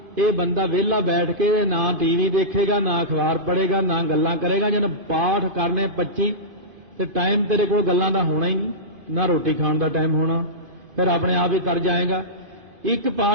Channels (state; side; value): late; left; 2.5 ms